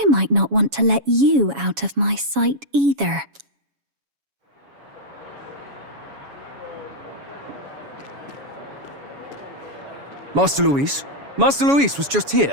might not want to let you out of my sight either. Master Luis? Master Luis was just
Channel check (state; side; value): late; left; 7.2 ms